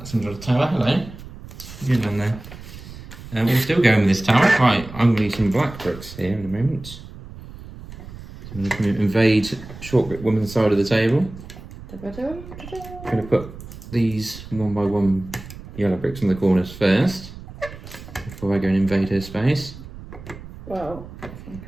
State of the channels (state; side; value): noise; right; rumble, 15 dB below the sound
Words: another tower. Hello. Good on there. We're still going with this tower. Right, I'm going to use some black bricks here in a moment. I'm going to invade short brick woman's side of the table. I'm going to put these 1 by 1 yellow bricks on the corners first, before I go and invade her space. Well, if I'm